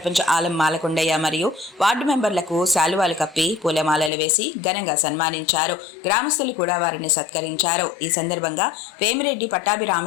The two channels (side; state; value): right; drops out; at 4.1 s